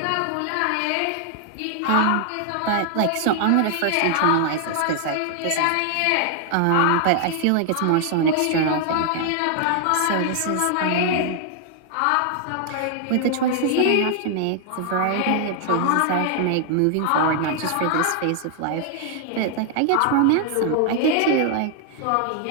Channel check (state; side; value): different; both; correlation 0.00